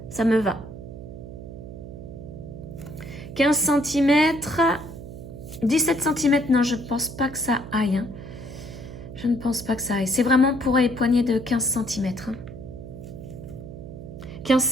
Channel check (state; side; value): noise; right; hum, 12 dB below the sound